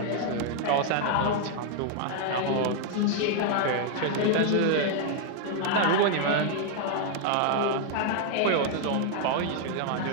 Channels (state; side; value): different; both; correlation 0.00